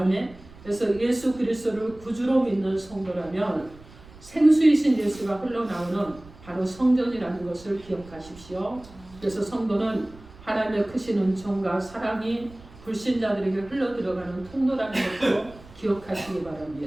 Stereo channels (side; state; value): right; noise; rumble, 21 dB below the sound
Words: 그래서 예수 그리스도를 구주로 믿는 성도라면 생수이신 예수가 흘러나오는 바로 성전이라는 것을 기억하십시오. 그래서 성도는 하나님의 크신 은총과 사랑이 불신자들에게 흘러들어가는 통로라는 것도 기억하시기